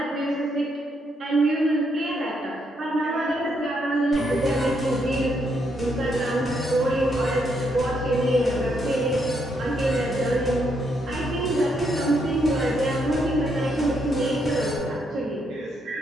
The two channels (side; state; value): both; normal; correlation 0.76